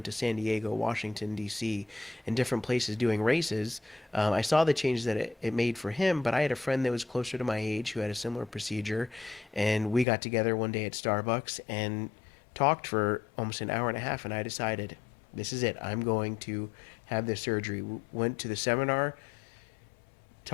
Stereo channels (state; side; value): drops out; right; at 10.1 s